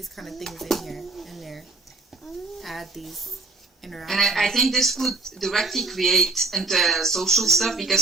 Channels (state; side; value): quieter; left; 3.5 dB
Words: kind of things in there, add these interactions. And I think this would directly create into social stuff,